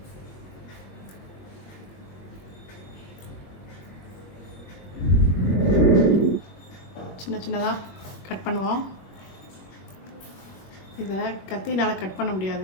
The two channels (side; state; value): right; late; 21 ms